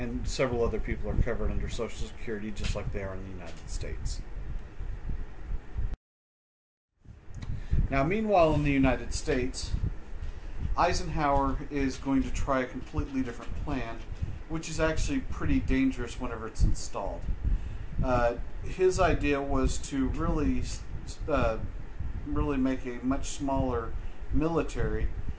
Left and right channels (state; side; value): identical; both; correlation 1.00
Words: several other people are covered under Social Security just like they are in the United States. Now, meanwhile, in the United States, Eisenhower is going to try a completely different plan, which is actually pretty dangerous whenever it's installed. His idea was to really make a much smaller military,